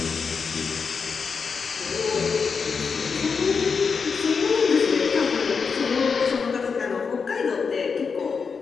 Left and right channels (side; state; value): right; quieter; 5.5 dB